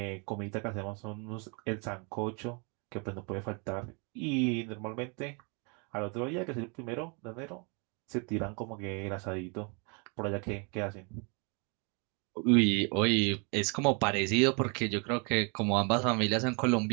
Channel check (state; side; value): quieter; left; 34.0 dB